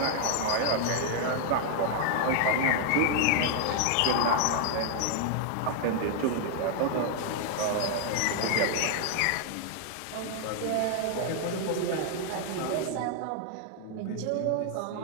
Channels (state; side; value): different; both; correlation 0.00